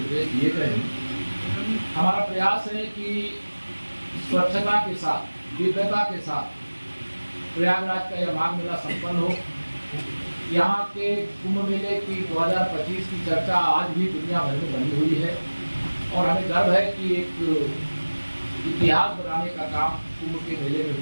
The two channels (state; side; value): inverted; both; correlation -1.00